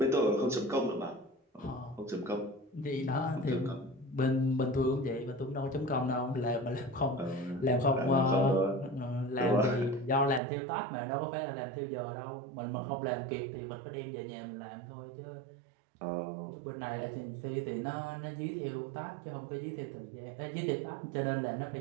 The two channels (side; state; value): left; drops out; at 10.4 s